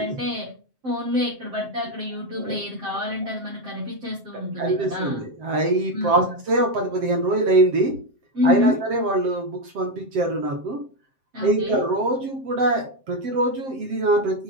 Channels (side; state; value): left; late; 7.6 ms